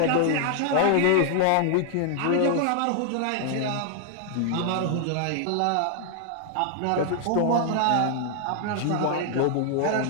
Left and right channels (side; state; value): both; different; correlation 0.00